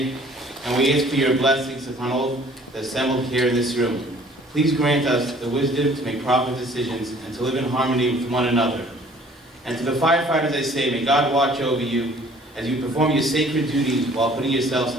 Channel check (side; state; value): both; normal; correlation 0.54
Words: and we ask for your blessings upon all the assembled here in this room. Please grant us the wisdom to make proper decisions and to live in harmony with one another. And to the firefighters I say, may God watch over you as you perform your sacred duties while putting yourselves